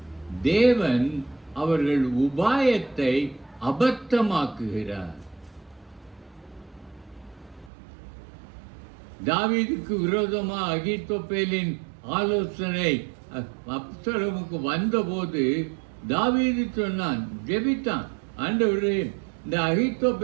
தேவன் அவர்கள் உபாயத்தை அபத்தமாக்குகிறார். தாவீதுக்கு விரோதமாக அகித்தோப்பேலின் ஆலோசனை அப்சலோமுக்கு வந்தபோது தாவீது சொன்னான், ஜெபித்தான், ஆண்டவரே இந்த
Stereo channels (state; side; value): drops out; left; at 7.7 s